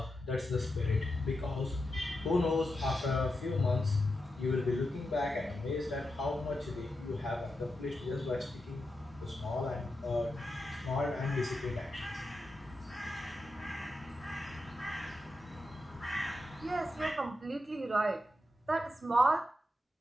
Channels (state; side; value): normal; both; correlation 0.88